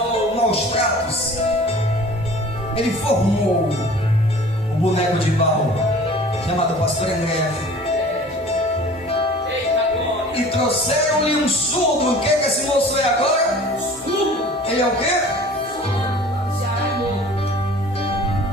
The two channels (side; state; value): both; normal; correlation 0.45